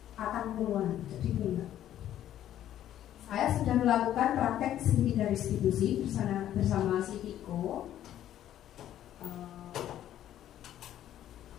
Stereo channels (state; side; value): quieter; right; 11.8 dB